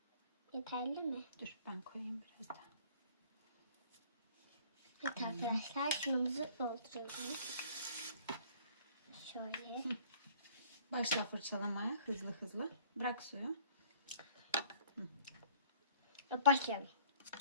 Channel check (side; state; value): both; inverted; correlation -0.55